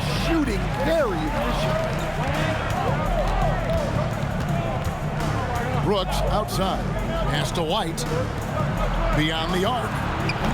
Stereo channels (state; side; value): identical; both; correlation 1.00